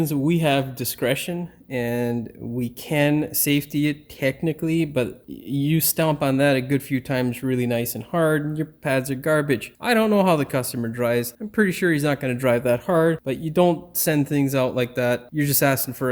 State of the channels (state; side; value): identical; both; correlation 1.00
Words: we have discretion and we can safety it technically, but you stomp on that a good few times really nice and hard and your pads are garbage. I don't know how the customer drives. I'm pretty sure he's not going to drive that hard, but you don't send things out like that. You're just asking for